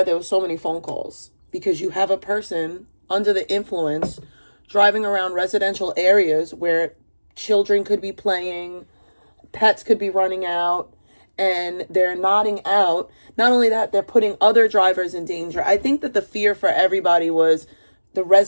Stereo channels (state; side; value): inverted; both; correlation -1.00